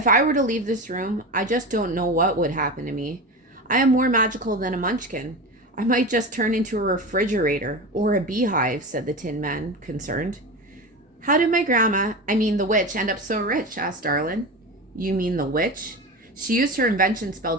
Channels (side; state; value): both; normal; correlation 0.25